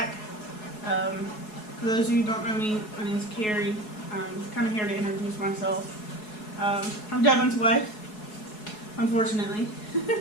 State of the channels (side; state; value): right; late; 4.7 ms